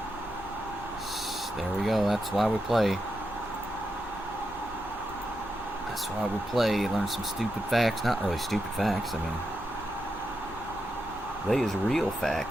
There we go. That's why we play. That's why we play. Learn some stupid facts. Not really stupid facts. I mean, they is real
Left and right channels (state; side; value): noise; left; hum, 20 dB below the sound